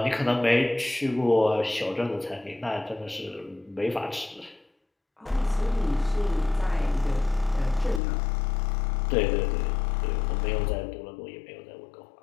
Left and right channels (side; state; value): right; drops out; at 8.0 s